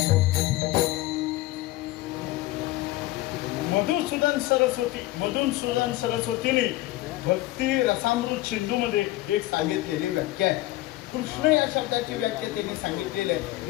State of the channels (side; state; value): right; quieter; 17.4 dB